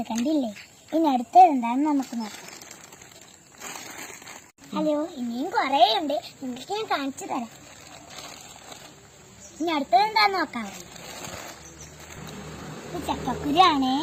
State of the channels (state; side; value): identical; both; correlation 1.00